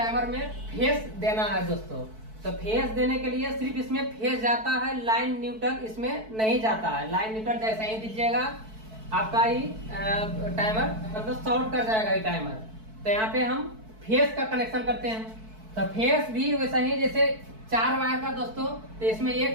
में फेस देना है दोस्तों। तो फेस देने के लिए सिर्फ इसमें फेस जाता है, लाइन न्यूट्रल इसमें नहीं जाता है। लाइन न्यूट्रल जैसे ही दीजिएगा आपका ही टाइमर मतलब शॉर्ट कर जाएगा ये टाइमर। तो यहाँ पे हम फेस का कनेक्शन करते हैं। तो फेस भी वैसा ही, जैसे 4 वायर का दोस्तों, तो इसमें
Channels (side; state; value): left; late; 4.6 ms